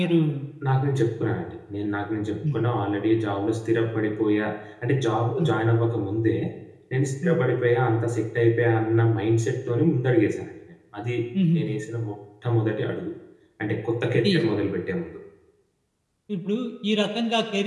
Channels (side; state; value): both; identical; correlation 1.00